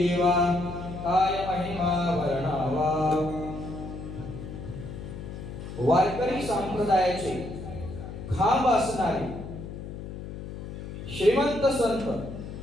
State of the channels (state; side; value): noise; left; hum, 9 dB below the sound